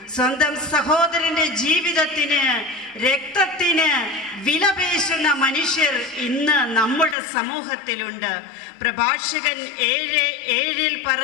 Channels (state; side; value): drops out; right; at 7.2 s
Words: സ്വന്തം സഹോദരന്റെ ജീവിതത്തിന്, രക്തത്തിന് വിലപേശുന്ന മനുഷ്യർ ഇന്ന് നമ്മുടെ സമൂഹത്തിലുണ്ട്. പ്രഭാഷകൻ 7:7